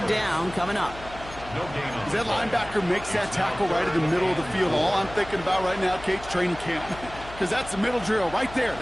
down coming up. As that linebacker makes that tackle right in the middle of the field, all I'm thinking about right now, Kate's training camp. Because that's the middle drill right there.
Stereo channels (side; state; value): left; noise; hum, 16 dB below the sound